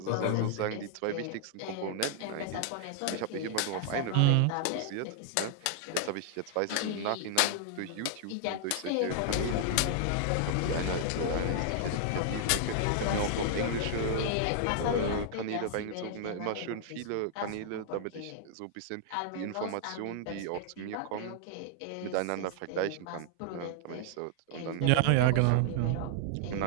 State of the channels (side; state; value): both; different; correlation 0.00